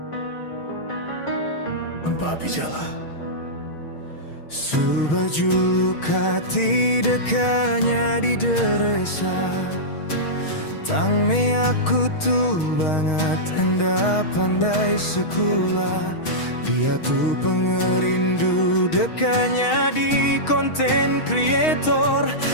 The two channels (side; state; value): right; late; 6.3 ms